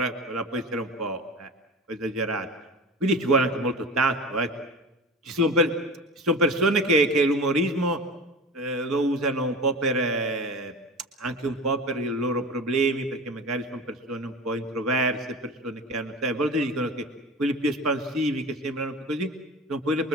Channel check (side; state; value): both; normal; correlation 0.33